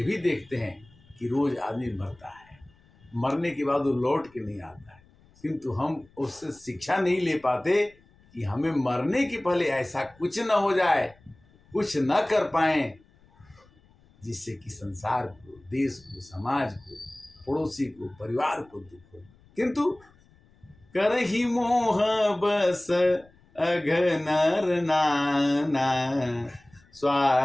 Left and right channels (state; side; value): noise; left; rumble, 29 dB below the sound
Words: भी देखते हैं कि रोज आदमी मरता है, मरने के बाद वो लौट के नहीं आता है, किंतु हम उससे शिक्षा नहीं ले पाते कि हमें मरने के पहले ऐसा कुछ न हो जाए, कुछ न कर पाएं जिससे कि संसार को, देश को, समाज को, पड़ोसी को, परिवार को दुख हो। किंतु करहि मोह बस अघनर नाना,